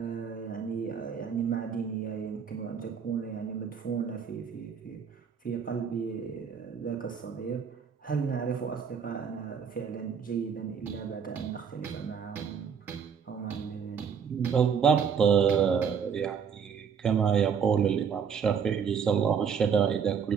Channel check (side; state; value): left; quieter; 6.9 dB